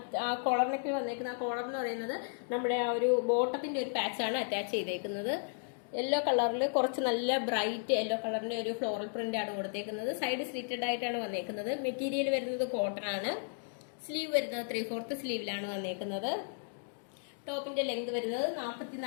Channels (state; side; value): silent; right; digital silence